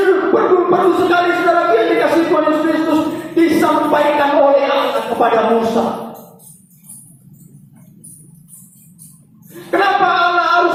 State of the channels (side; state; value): both; identical; correlation 1.00